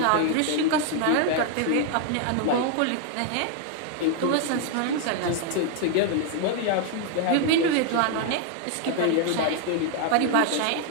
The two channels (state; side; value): different; both; correlation 0.00